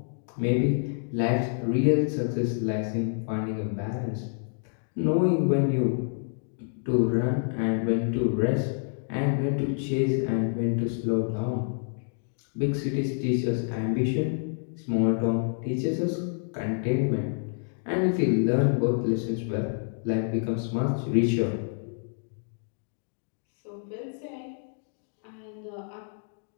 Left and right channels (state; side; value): silent; right; digital silence